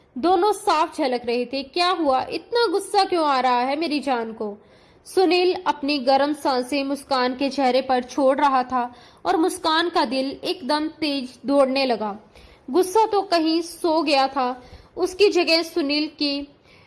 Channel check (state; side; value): identical; both; correlation 1.00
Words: दोनों साफ झलक रहे थे। क्या हुआ? इतना गुस्सा क्यों आ रहा है मेरी जान को? सुनील अपनी गर्म सांसें मुस्कान के चेहरे पर छोड़ रहा था और मुस्कान का दिल एकदम तेज दौड़ने लगा। गुस्सा तो कहीं सो गया था, उसकी जगह सुनील की